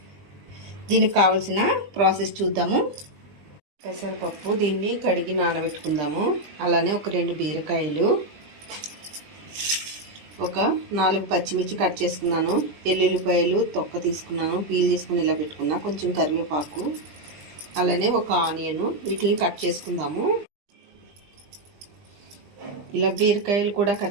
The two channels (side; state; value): left; late; 20 ms